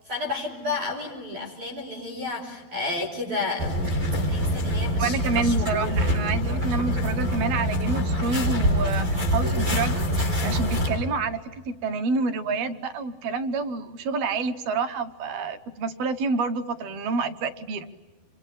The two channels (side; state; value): left; late; 12 ms